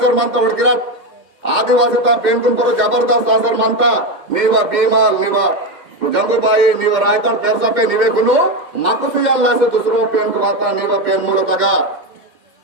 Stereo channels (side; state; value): left; late; 2.1 ms